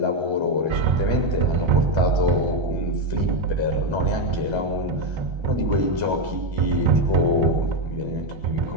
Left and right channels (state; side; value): late; left; 1.3 ms